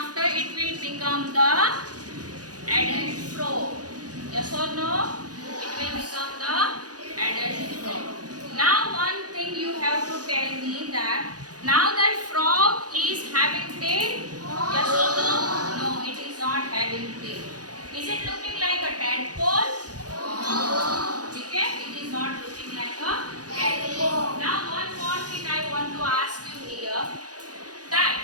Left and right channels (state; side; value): late; left; 0.68 ms